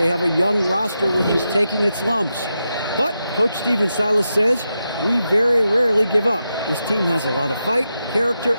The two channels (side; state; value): both; inverted; correlation -0.87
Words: have a young roster which is taking its lumps. But Coach Stephen Silas says, we very rarely give up. This team has a lot of fight, character,